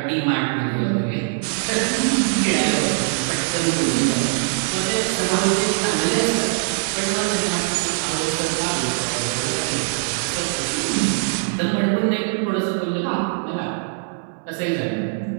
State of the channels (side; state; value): left; silent; digital silence